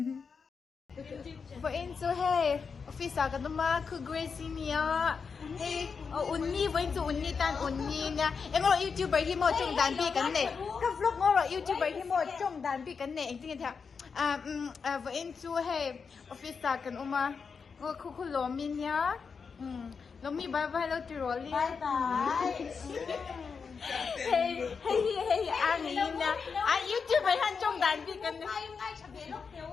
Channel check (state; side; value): quieter; right; 5.6 dB